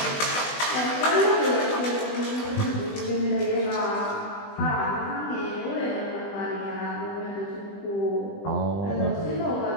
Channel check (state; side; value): late; right; 20 ms